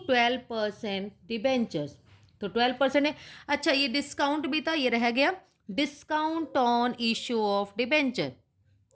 12% debentures. तो 12% है। अच्छा ये डिस्काउंट भी था, ये रह गया, discount on issue of debenture.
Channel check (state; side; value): identical; both; correlation 1.00